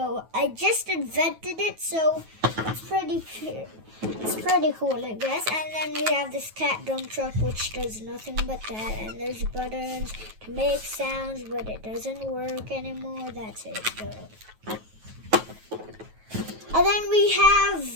I just invented it, so it's pretty cool, I guess. And then we have this cat dump truck, which does nothing but that. And there's buttons to make sounds, but it doesn't work anymore. That's it, though. And then we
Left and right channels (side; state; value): left; late; 9.2 ms